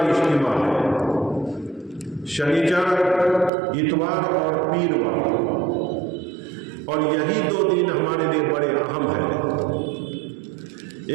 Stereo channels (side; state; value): left; drops out; at 3.5 s